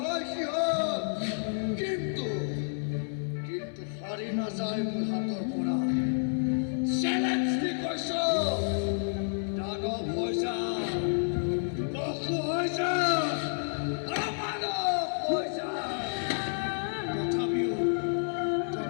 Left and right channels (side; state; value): right; silent; 58 dB below the other